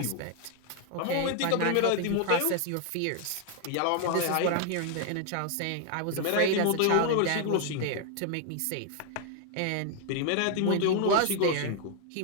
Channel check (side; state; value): both; different; correlation 0.00